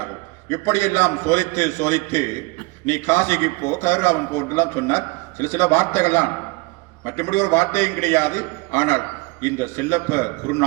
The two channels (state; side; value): quieter; left; 25.8 dB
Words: இப்படியெல்லாம் சோதித்து சோதித்து நீ காசிக்கு போ, கதிராமன் போன்றெல்லாம் சொன்னார். சில வார்த்தைகள்லாம், மற்றபடி ஒரு வார்த்தையும் கிடையாது. ஆனால் இந்த செல்லப்ப